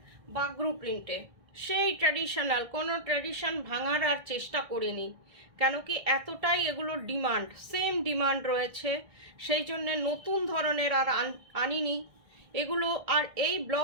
বাগরু প্রিন্টে, সেই ট্র্যাডিশনাল, কোনো ট্র্যাডিশন ভাঙার আর চেষ্টা করিনি, কেন কি এতটাই এগুলোর ডিমান্ড, সেম ডিমান্ড রয়েছে, সেই জন্যে নতুন ধরনের আর আনিনি এগুলো। আর এই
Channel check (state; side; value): late; left; 1.6 ms